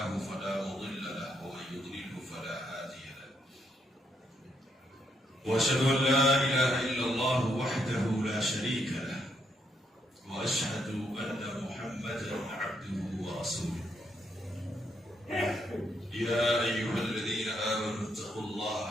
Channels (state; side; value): normal; both; correlation 0.76